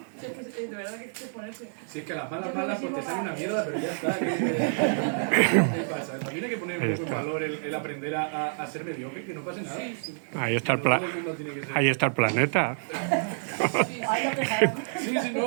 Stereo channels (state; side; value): silent; left; digital silence